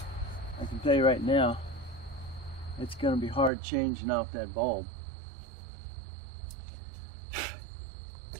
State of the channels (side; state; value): left; drops out; at 3.5 s